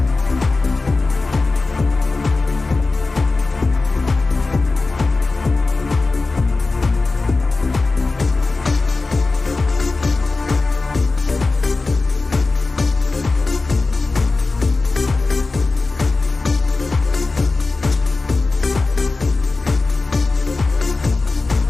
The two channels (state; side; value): quieter; right; 3.7 dB